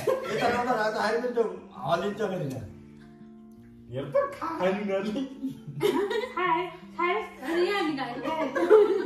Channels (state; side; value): identical; both; correlation 1.00